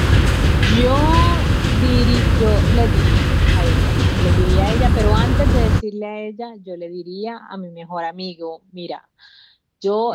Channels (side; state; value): both; identical; correlation 1.00